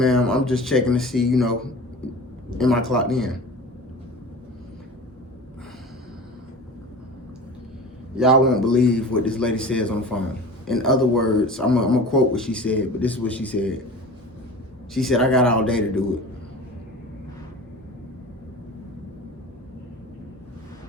I'm just checking to see, am I clocked in? Y'all won't believe what this lady says on the phone. In other words, I'm gonna quote what she said, but this is what she said. She said, I got all day to do it.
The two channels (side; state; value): both; normal; correlation 0.37